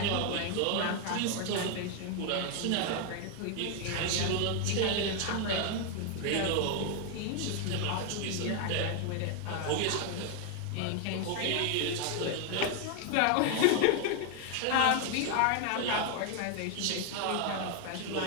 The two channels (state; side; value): different; both; correlation 0.01